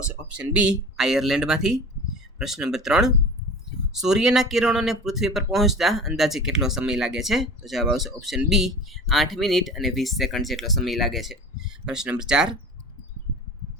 ઓપ્શન બી, આયર્લેન્ડમાંથી. પ્રશ્ન નંબર 3: સૂર્યના કિરણોને પૃથ્વી પર પહોંચતા અંદાજે કેટલો સમય લાગે છે? તો જવાબ આવશે ઓપ્શન બી, 8 મિનિટ અને 20 સેકન્ડ જેટલો સમય લાગે છે. પ્રશ્ન નંબર 4:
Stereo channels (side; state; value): both; normal; correlation 0.37